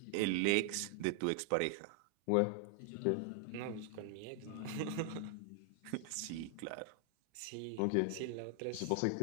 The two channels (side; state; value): both; different; correlation 0.00